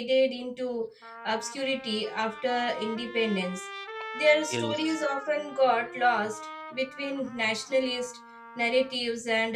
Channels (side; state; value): both; identical; correlation 1.00